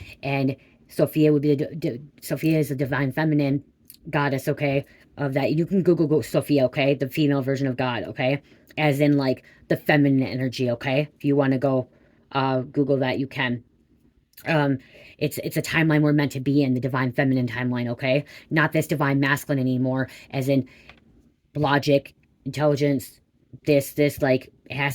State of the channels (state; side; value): identical; both; correlation 1.00